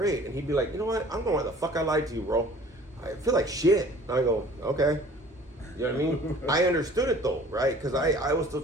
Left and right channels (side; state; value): both; normal; correlation 0.50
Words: And he'd be like, you know what? I don't know why the fuck I lied to you, bro. I feel like shit. And I go, okay. You know what I mean? I understood it though, right? Because I was still